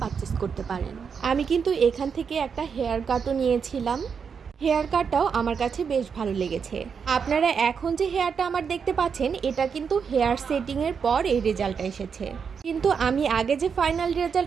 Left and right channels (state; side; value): quieter; left; 6.4 dB